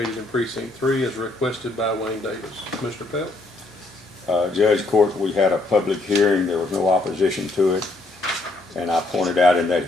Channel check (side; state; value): right; quieter; 3.0 dB